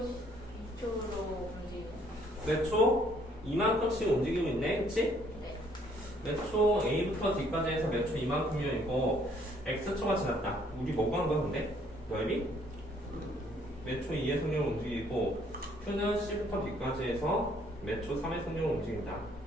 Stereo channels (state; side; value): normal; both; correlation 0.64